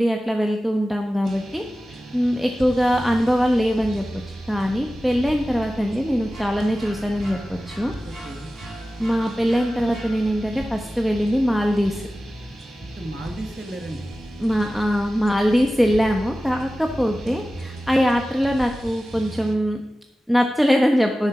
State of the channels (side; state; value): both; normal; correlation 0.95